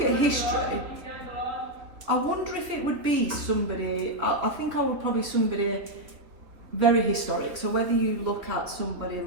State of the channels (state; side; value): late; left; 3.2 ms